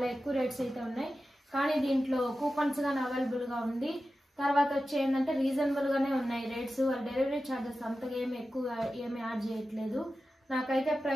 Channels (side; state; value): both; normal; correlation 0.93